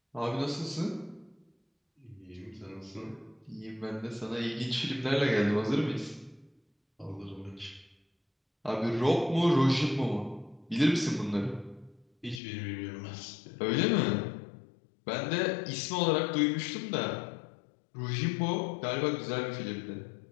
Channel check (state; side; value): drops out; right; at 12.4 s